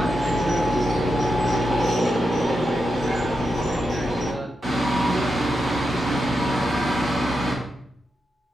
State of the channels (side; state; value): both; normal; correlation 0.87